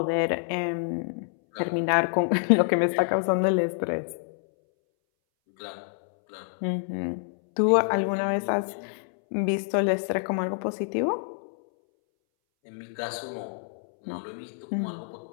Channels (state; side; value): silent; right; 60 dB below the other